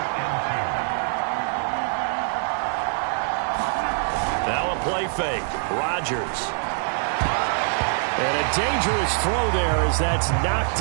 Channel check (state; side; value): silent; left; 63 dB below the other